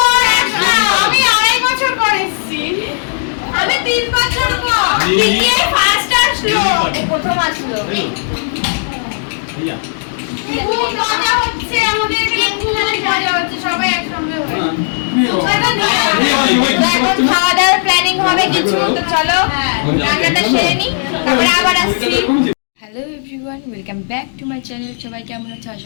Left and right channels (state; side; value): silent; right; digital silence